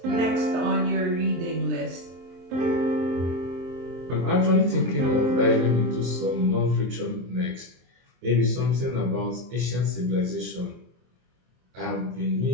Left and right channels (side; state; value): left; late; 23 ms